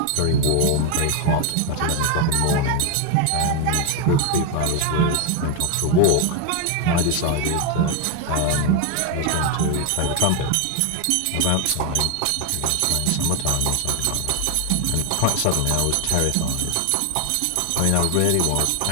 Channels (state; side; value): different; both; correlation 0.01